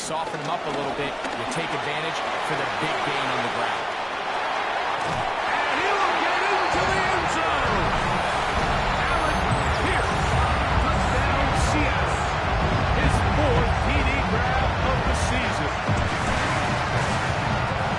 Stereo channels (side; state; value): both; identical; correlation 1.00